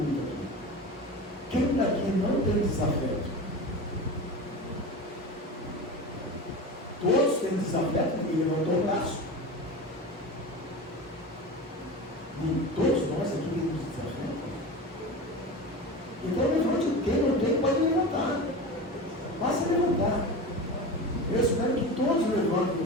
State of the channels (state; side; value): normal; both; correlation 0.29